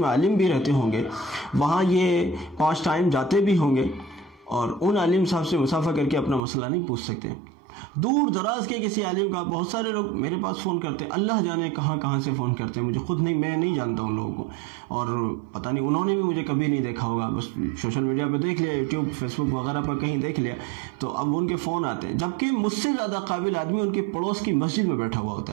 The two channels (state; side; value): drops out; left; at 6.4 s